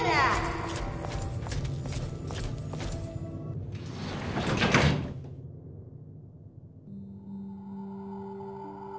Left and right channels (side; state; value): both; identical; correlation 1.00